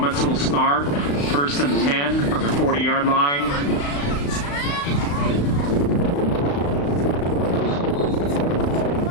will start 1st and 10 from the 40-yard line.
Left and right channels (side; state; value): right; late; 35 ms